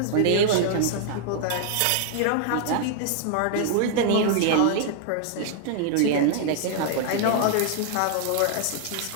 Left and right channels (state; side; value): different; both; correlation 0.00